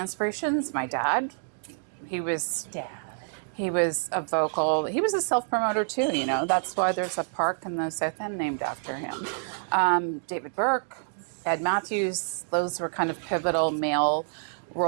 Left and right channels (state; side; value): silent; left; digital silence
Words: my dad, he was a vocal, he was a self-promoter too, you know. That's why there's a park in the South End named after him. David Burke, Ed Matthews, those were kind of pivotal male